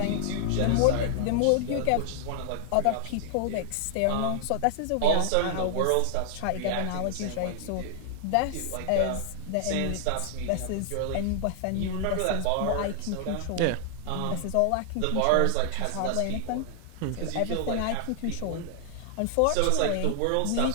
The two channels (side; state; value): both; different; correlation 0.00